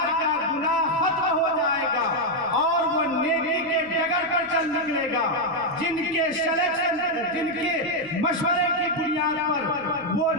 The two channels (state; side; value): noise; right; rumble, 25 dB below the sound